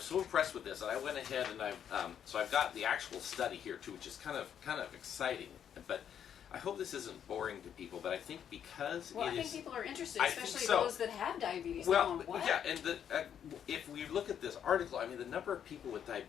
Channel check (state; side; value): quieter; right; 8.9 dB